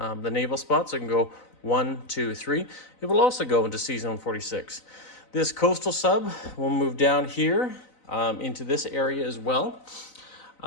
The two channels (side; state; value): right; late; 4.0 ms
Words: naval spots. So it can go 1, 2, 3. It will also go into Sea Zone 46. This coastal sub will move down here into this area as well.